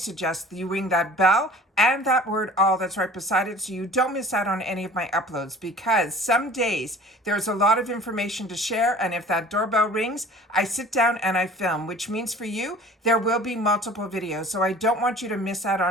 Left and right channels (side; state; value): both; normal; correlation 0.45